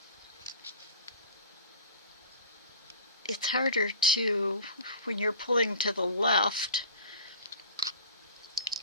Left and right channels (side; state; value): both; inverted; correlation -0.40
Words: it's harder to, when you're pulling to the left,